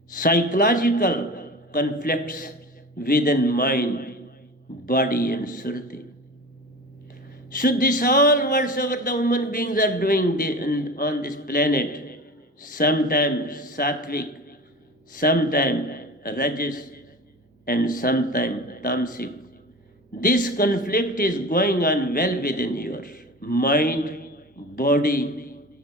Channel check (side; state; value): both; normal; correlation 0.34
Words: psychological conflicts within mind, body, and surti. So this all whatsoever the human beings are doing on this planet, sometimes sattvic, sometimes rajas, and sometimes tamasic. This conflict is going on well within your mind, body,